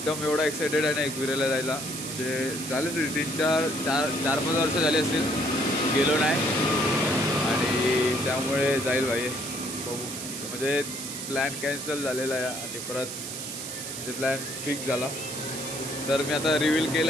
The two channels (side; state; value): right; noise; hiss, 7 dB below the sound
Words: एवढा एक्सायटेड आहे ना एकविरेला जायला. म्हणजे झाले 4-5 वर्ष झाले असतील गेलो नाही. आणि त्यामुळे जाईल भाई, बघू. म्हणजे प्लॅन कॅन्सल झालेला आहे आणि परत म्हणजे प्लॅन फिक्स झाला. तर मी आता रिव्हील